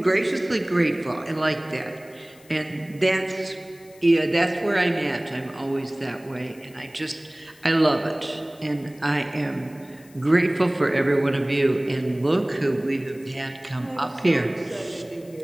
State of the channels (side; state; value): left; noise; hiss, 26 dB below the sound